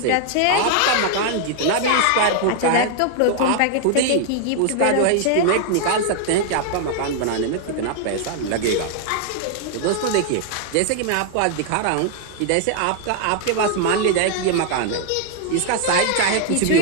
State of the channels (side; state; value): both; different; correlation 0.00